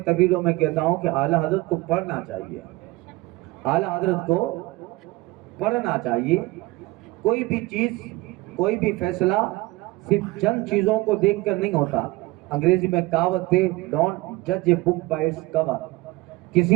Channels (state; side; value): quieter; left; 20.8 dB